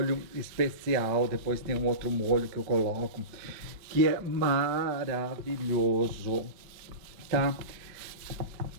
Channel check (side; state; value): left; late; 5.0 ms